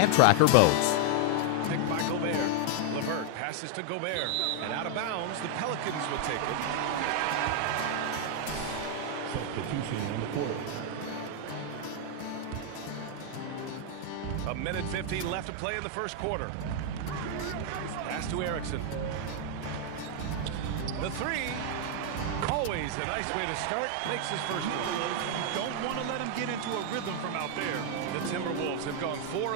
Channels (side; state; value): both; different; correlation 0.00